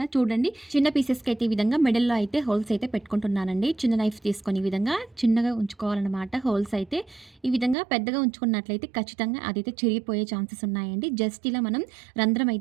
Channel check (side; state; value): left; drops out; at 7.8 s